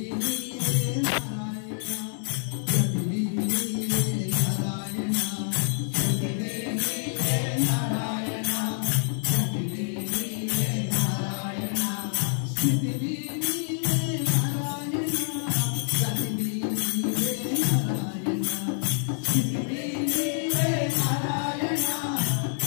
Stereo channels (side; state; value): right; silent; digital silence